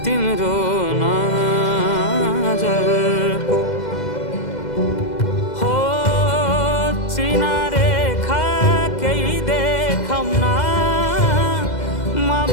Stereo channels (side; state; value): right; late; 2.0 ms